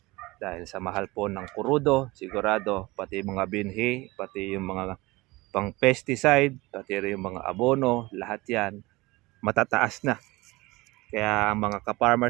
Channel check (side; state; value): left; quieter; 21.6 dB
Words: Dahil sa mahal po ng kurudo, sigurado, pati mga binhi, pati yung mga pang pesticide, pati rin yung mga abono, lahat yan matataas na. Kaya ang mga